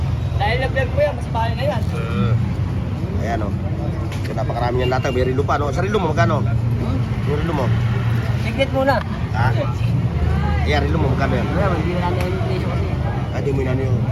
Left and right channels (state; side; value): identical; both; correlation 1.00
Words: Dahil na-vlog ko yan, mas bahay na yan. Ayan o. So, napakarami niyang latag. May rilo pa, no? Sa rilo mo, magkano? Yung rilo mo? Signet muna. Ha? Ayan, rilo mo, magkano yan? Wala, hindi na namin yung presyo kasi. Hindi mo na yung